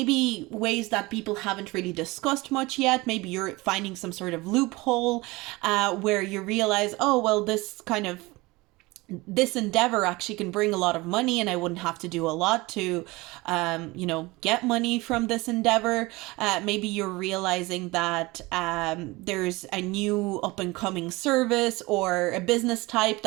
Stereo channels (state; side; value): quieter; left; 22.3 dB